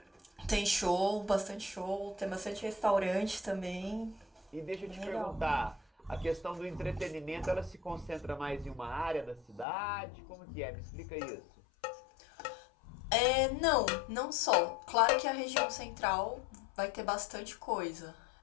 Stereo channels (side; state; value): right; drops out; at 9.7 s